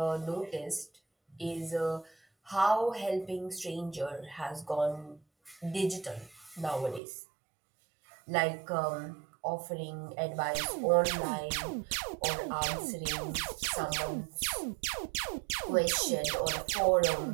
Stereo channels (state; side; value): drops out; left; at 7.0 s